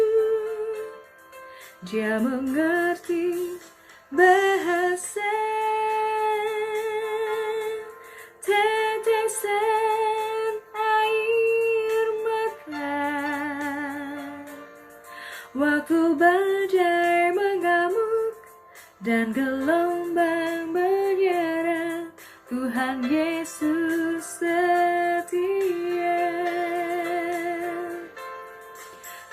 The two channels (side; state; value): both; identical; correlation 1.00